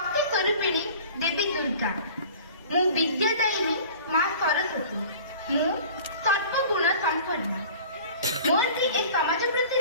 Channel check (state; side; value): inverted; both; correlation -0.44